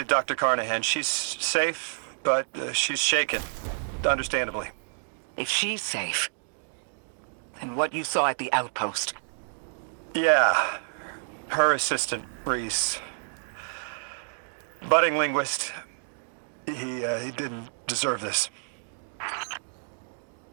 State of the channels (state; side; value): silent; left; digital silence